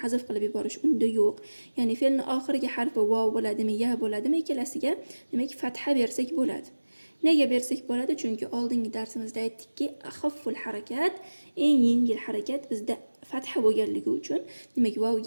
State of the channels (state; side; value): inverted; both; correlation -1.00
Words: hazf qilib yuborish unda yo'q. Ya'ni fe'lning oxirgi harfi vav bo'ladimi, ya bo'ladimi, ikkalasiga demak fatha bersak bo'ladi. Nega bersak bo'ladi? Chunki oldingi darsimizda aytdikki, axafful harakat, eng yengil harakat bizda fatha bo'lganligi uchun, demak